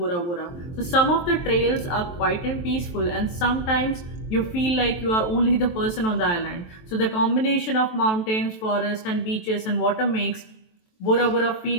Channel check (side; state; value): right; late; 23 ms